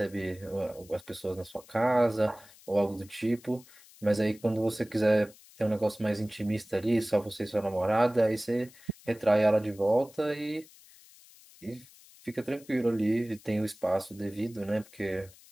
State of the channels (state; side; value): noise; left; hiss, 24 dB below the sound